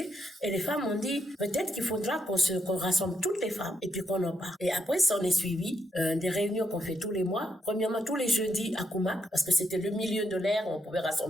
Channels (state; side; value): normal; both; correlation 0.81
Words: Et les femmes ont dit, peut-être qu'il faudra qu'on rassemble toutes les femmes et puis qu'on en parle. Et après, ça en est suivi des réunions qu'on fait tous les mois. Premièrement, tous les jeudis à Koumak, parce que c'était le milieu de l'air, on pouvait